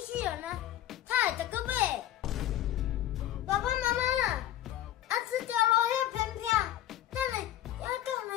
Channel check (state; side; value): quieter; right; 12.8 dB